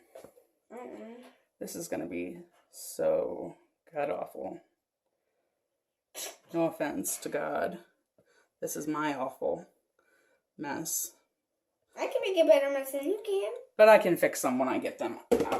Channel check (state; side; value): identical; both; correlation 1.00